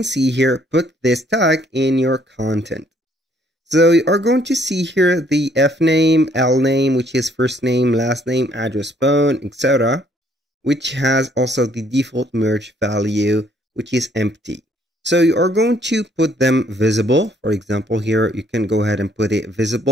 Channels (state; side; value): normal; both; correlation 0.65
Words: see here, put this tag in your content. So you are going to see here the F name, L name, which is first name, last name, address, phone, etc., which has also the default merge value, which is empty. So you are going to put them visible. For example, here you can go ahead and put it